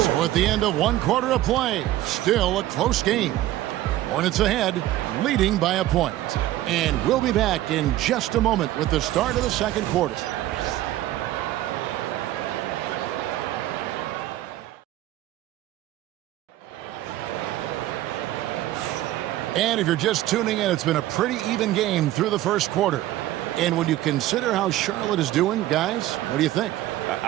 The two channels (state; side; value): quieter; left; 14.8 dB